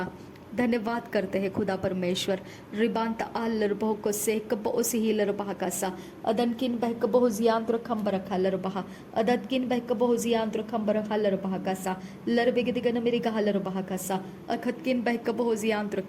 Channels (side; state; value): both; identical; correlation 1.00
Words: धन्यवाद करते हैं खुदा परमेश्वर। रिबांत आल लरबह को से कब उसी ही लरबहकसा अदनकिन बहकब हुजियांत्र खंब रखा लरबहा अदतकिन बहकब हुजियांत्र खंब रखा लरबहकसा लरबेगदिगन मेरी कहा लरबहकसा अखतकिन बहकब हुजियांत्र